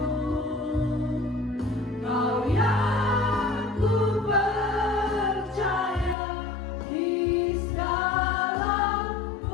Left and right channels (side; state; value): right; drops out; at 6.2 s